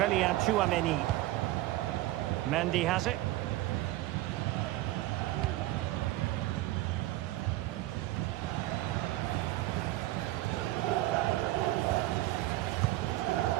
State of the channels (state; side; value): quieter; left; 16.9 dB